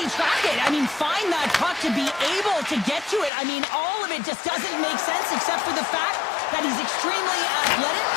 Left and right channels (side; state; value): right; drops out; at 3.3 s